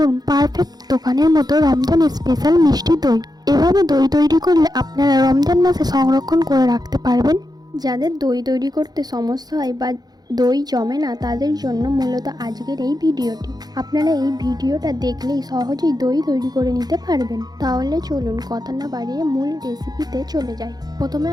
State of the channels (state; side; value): late; left; 0.19 ms